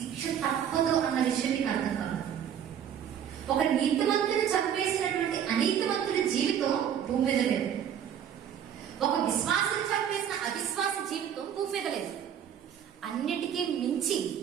తప్పదు అన్న విషయం మీకు అర్థం కావాలి. ఒక నీతిమంతుని చంపేసినటువంటి అనీతిమంతుడి జీవితం భూమి మీద లేదు. ఒక విశ్వాసం చంపేసిన అవిశ్వాస జీవితం భూమి మీద లేదు. అన్నిటికీ మించి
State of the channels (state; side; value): quieter; left; 9.1 dB